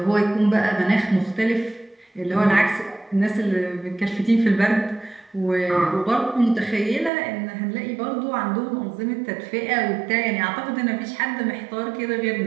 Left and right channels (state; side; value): drops out; left; at 7.1 s